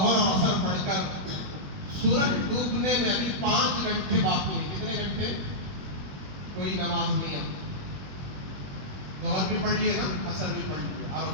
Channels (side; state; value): left; late; 21 ms